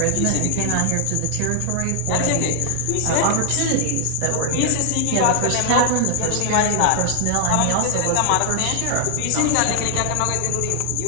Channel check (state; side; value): different; both; correlation 0.00